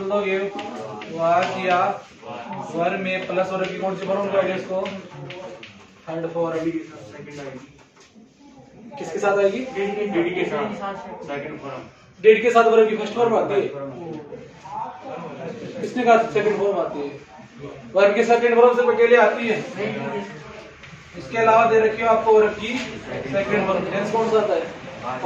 दोगे वाज या वर में प्लस वर्ब की कौन सी फॉर्म दोगे इसको? Third form. किसके साथ आएगी? डिड के साथ सेकंड फॉर्म। डिड के साथ वर्ब की फर्स्ट फॉर्म आती है। किसने कहा सेकंड फॉर्म आती है? वर्ब के सेकंड फॉर्म से अकेले आती है। इसके अलावा दे रखी हो आपको वर्ब की सेकंड फॉर्म। टेंस कौन सा आता है?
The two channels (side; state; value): both; identical; correlation 1.00